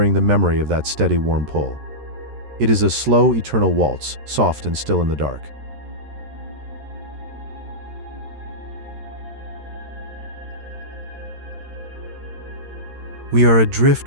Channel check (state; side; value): late; left; 13 ms